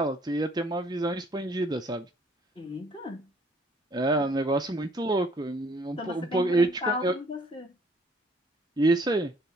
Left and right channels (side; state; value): both; normal; correlation 0.60